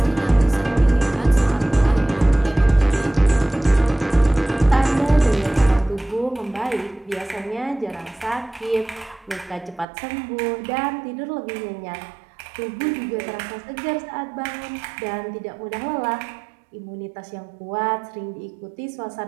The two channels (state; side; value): drops out; left; at 9.9 s